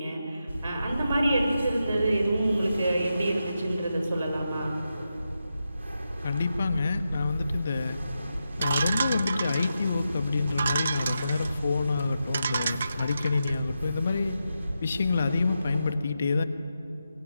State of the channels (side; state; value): both; inverted; correlation -0.88